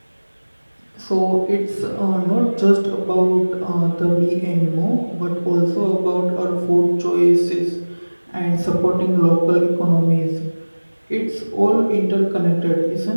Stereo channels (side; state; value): both; inverted; correlation -1.00